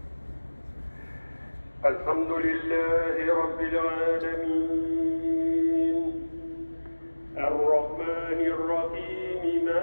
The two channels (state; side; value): inverted; both; correlation -1.00